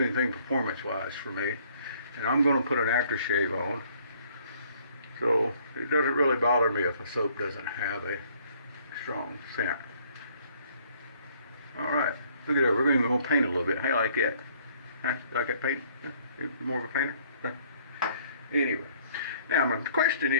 anything performance-wise for me. And I'm going to put an aftershave on. So it doesn't really bother me if a soap doesn't have a strong scent. All right, look at that, we're going to paint a little bit. How you like that? Huh? You like that paint? You more of a painter? Huh? Anyway, now my question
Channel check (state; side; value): inverted; both; correlation -0.62